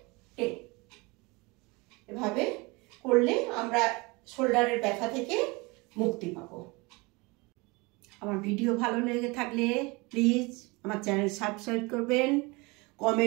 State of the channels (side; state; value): left; quieter; 25.9 dB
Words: 10। এভাবে করলে আমরা শোল্ডারের ব্যথা থেকে মুক্তি পাবো। আমার ভিডিও ভালো লেগে থাকলে প্লিজ আমার চ্যানেল সাবস্ক্রাইব করবেন,